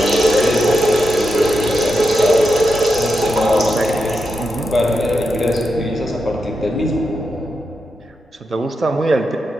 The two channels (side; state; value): both; normal; correlation 0.86